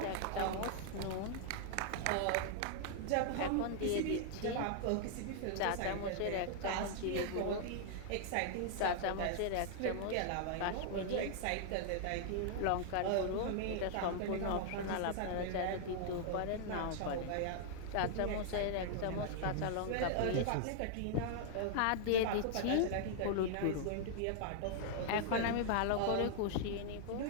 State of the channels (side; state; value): both; different; correlation -0.01